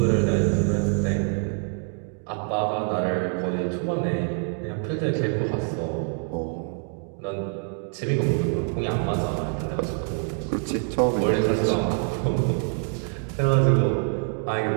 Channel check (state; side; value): quieter; left; 39.9 dB